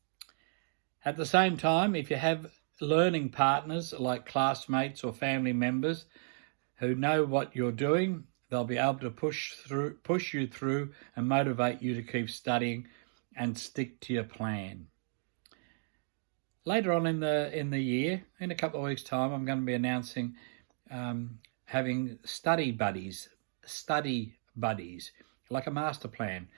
At the same time, if you have learning partners like classmates or family members who know what you're doing, they'll be able to push you through and motivate you to keep studying and stick to your plan. Later on in the year, in a couple of weeks' time, I'm going to be announcing having study buddies, like a master plan,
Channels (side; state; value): left; silent; digital silence